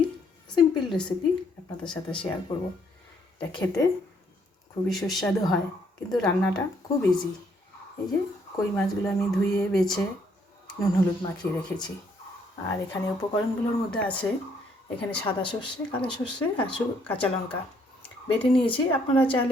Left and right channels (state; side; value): normal; both; correlation 0.68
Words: সিম্পল রেসিপি আপনাদের সাথে শেয়ার করব। এটা খেতে খুবই সুস্বাদু হয়, কিন্তু রান্নাটা খুব ইজি। এই যে কই মাছগুলো আমি ধুয়ে বেছে নুন হলুদ মাখিয়ে রেখেছি। আর এখানে উপকরণগুলোর মধ্যে আছে, এখানে সাদা সর্ষে, কালো সর্ষে আর কাঁচা লঙ্কা বেটে নিয়েছি। আপনারা